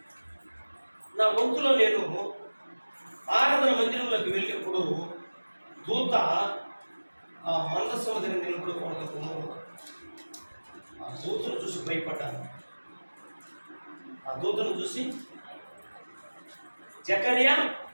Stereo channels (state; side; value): inverted; both; correlation -1.00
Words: నా వంతులో నేను ఆరాధన మందిరంలోకి వెళ్ళినప్పుడు దూత ఆ మందస్సు దగ్గర నిలబడుకోవడంతో ఆ దూతను చూసి భయపడ్డాను. ఆ దూతను చూసి జకర్యా